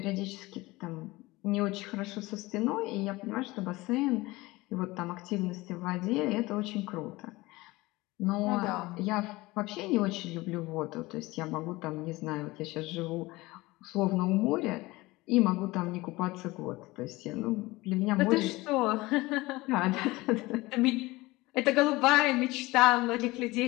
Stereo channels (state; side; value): quieter; right; 20.7 dB